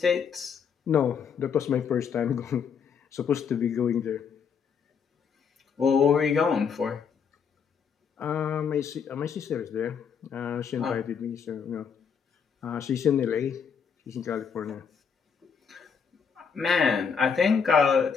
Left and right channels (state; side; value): quieter; right; 6.6 dB